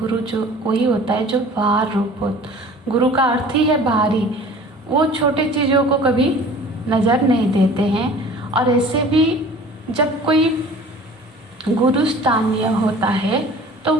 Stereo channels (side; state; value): both; normal; correlation 0.45